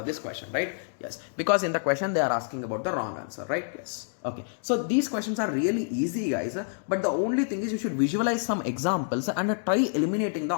this question, right? Yes. Because in the question they are asking about the wrong answer, right? Yes. Okay. So these questions are really easy, guys. But the only thing is you should visualize some examples and try eliminating the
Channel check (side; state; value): right; silent; digital silence